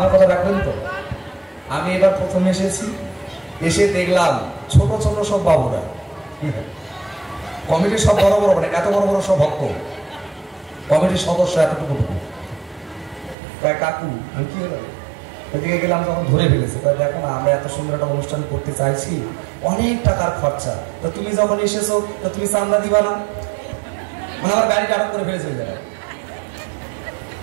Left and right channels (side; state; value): left; drops out; at 13.4 s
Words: কথা রাখবেন তো? আমি এবার প্রথম এসেছি, এসে দেখলাম ছোট ছোট সব বাবুরা, কমিটির সব বড় বড়, মানে এত বড় বড় সব ভক্ত, কমিটির সদস্য এতটুকু। প্রায় কাকু, আমি কি হলো ওইদিকে গেলাম, যখন ধরে ফেলেছে, দেখো না আমরা এত সুন্দর একটা অনুষ্ঠান করতে চাইছি, অনেক টাকার খরচা, তো তুমি যখন এসেছো তো তুমি চান্দা দিবা না? মানে আমার গাড়িটা আটক করে ফেলেছে ওই জায়গায়।